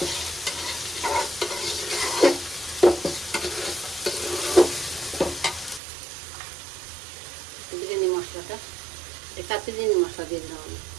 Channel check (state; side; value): drops out; left; at 5.8 s